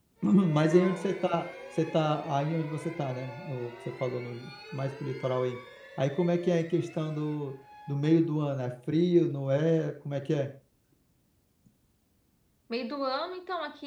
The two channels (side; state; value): both; identical; correlation 1.00